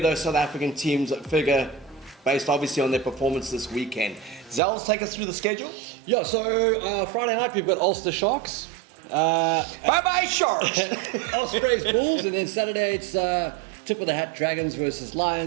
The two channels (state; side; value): drops out; left; at 4.6 s